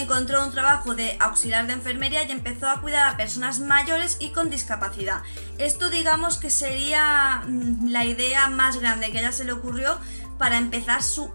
un trabajo de auxiliar de enfermería y empezó a cuidar a personas mayores y con discapacidad. Esto digamos que sería la idea más grande que a ella se le ocurrió para empezar su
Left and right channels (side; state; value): both; inverted; correlation -1.00